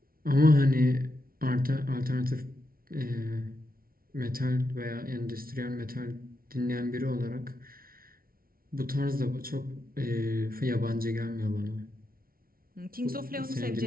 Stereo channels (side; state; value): left; late; 0.43 ms